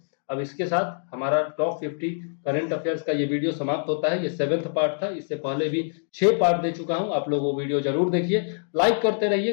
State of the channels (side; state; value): right; silent; digital silence